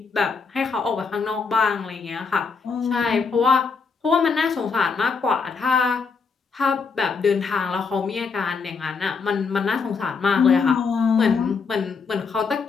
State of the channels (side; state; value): right; quieter; 5.1 dB